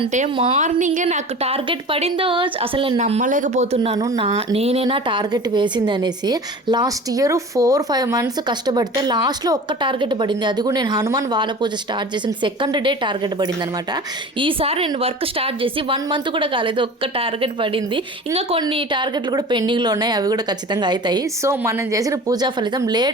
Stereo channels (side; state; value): both; normal; correlation 0.38